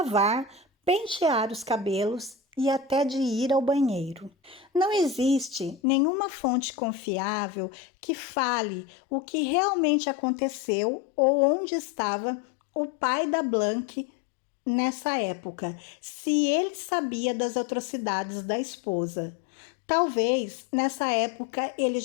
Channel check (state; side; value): drops out; right; at 5.8 s